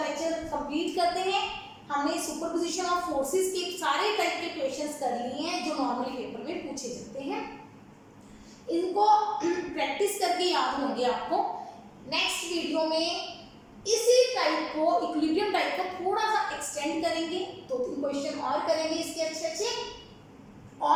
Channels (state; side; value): identical; both; correlation 1.00